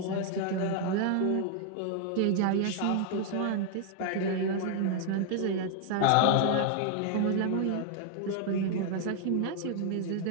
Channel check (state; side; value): different; both; correlation 0.00